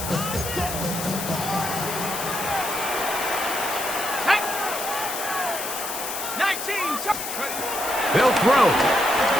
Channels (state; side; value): noise; left; hiss, 6 dB below the sound